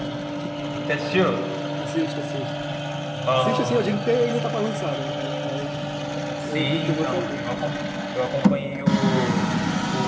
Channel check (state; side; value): identical; both; correlation 1.00